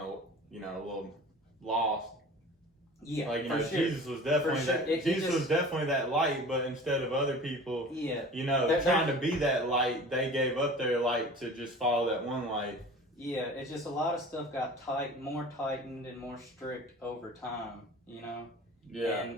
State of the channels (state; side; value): normal; both; correlation 0.41